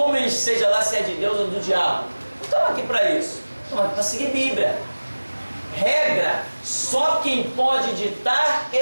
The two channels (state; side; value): inverted; both; correlation -1.00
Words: seja lá se é de Deus ou do diabo. Não estamos aqui para isso. Estamos aqui para seguir Bíblia. Regra, só quem pode ditar